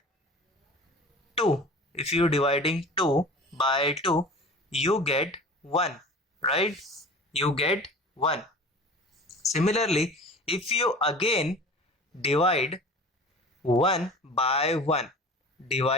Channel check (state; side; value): normal; both; correlation 0.40